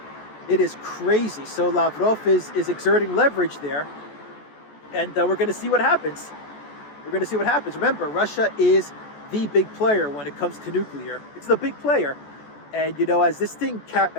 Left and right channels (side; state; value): right; late; 14 ms